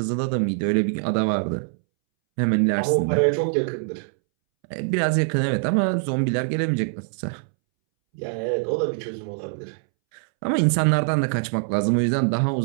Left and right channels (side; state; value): left; silent; 63 dB below the other